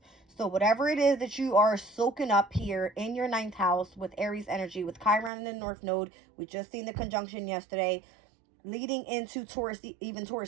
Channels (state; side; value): drops out; left; at 5.3 s